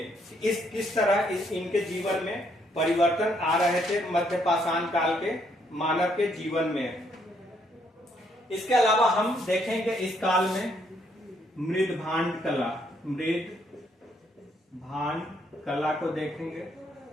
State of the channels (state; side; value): normal; both; correlation 0.71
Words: इस किस तरह इनके जीवन में परिवर्तन आ रहे थे मध्य पाषाण काल के मानव के जीवन में। इसके अलावा हम देखेंगे इस काल में मृदभांड कला, मृद भांड कला को देखेंगे,